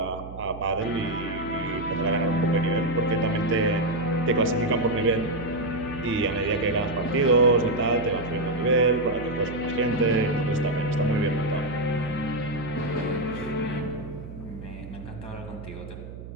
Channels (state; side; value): noise; right; hum, 12 dB below the sound